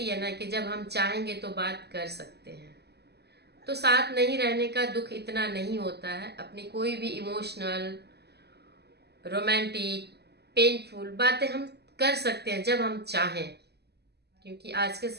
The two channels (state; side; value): late; left; 0.48 ms